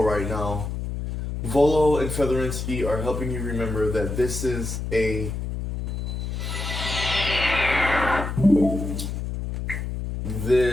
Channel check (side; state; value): left; noise; hum, 4 dB below the sound